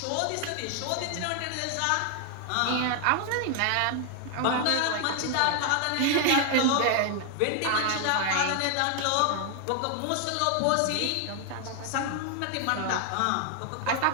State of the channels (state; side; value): different; both; correlation 0.00